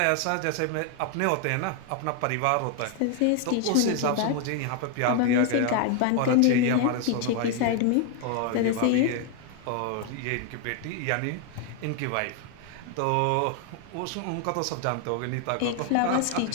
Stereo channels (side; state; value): both; different; correlation 0.00